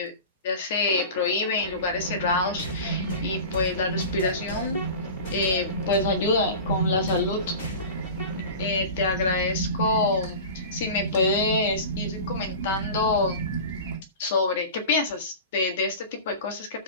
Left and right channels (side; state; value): both; inverted; correlation -0.34